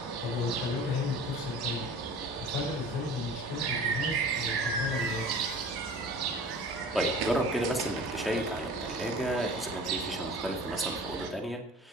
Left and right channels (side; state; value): both; normal; correlation 0.42